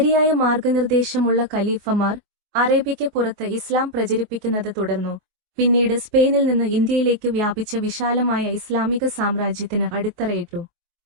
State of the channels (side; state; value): left; late; 24 ms